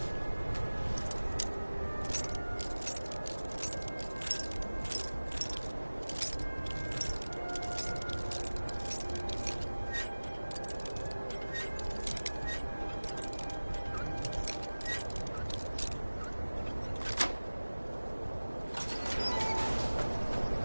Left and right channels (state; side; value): inverted; both; correlation -1.00